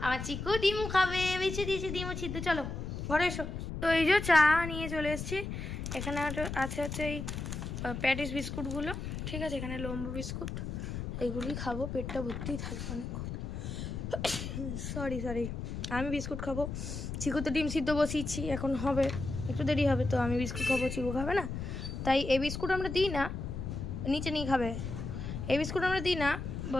আমার চিকু ডিম খাবে, বেছে দিয়েছি ডিম সিদ্ধ। চলো ঘরে এসো। তো এই যে চা নিয়ে চলে এসেছি। এখানে আছে এই প্যাটিস বিস্কুটগুলো, ঠিক আছে, এখানে লম্বু বিস্কুট, এইগুলি খাবো, পেটটা ভর্তি থাকবে অনেকক্ষণ। সরি আমি বিস্কুট খাবো, চিকু তো ডিম সিদ্ধ বসিয়েছি, এখন হবে একটু দেরি হবে, তো আমি বিস্কুট খাবো, চিকু খাবে না। তাই এই বিস্কুট আমরা দিই না, নিচে নিয়ে খাবে। এই বিস্কুট আমরা দিই না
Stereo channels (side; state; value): left; noise; rumble, 5 dB below the sound